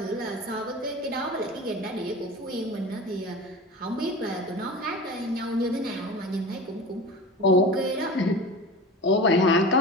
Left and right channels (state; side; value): normal; both; correlation 0.34